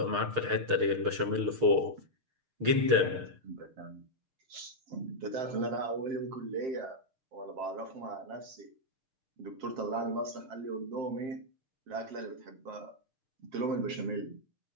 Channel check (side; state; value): left; late; 6.6 ms